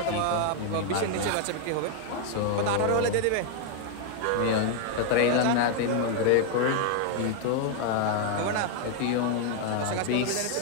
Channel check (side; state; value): both; different; correlation 0.00